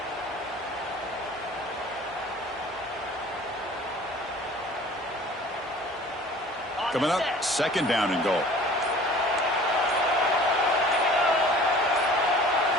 Coming up, 2nd down and goal.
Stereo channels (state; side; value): normal; both; correlation 0.47